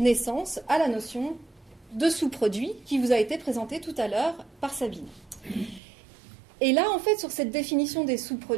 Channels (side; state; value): left; drops out; at 5.8 s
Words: à la notion de sous-produit qui vous a été présentée tout à l'heure par Sabine. Et là, en fait, sur cette définition des